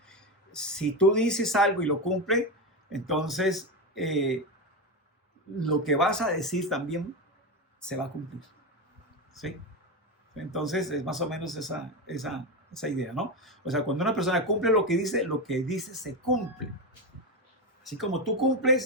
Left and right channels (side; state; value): both; normal; correlation 0.15